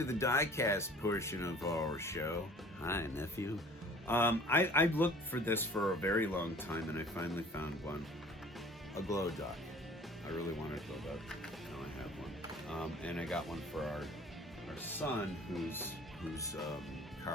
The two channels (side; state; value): both; normal; correlation 0.48